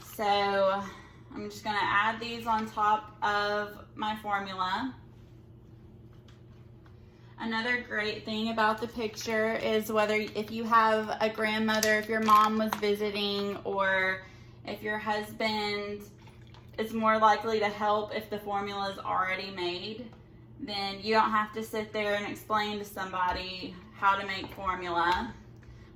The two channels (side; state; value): both; identical; correlation 1.00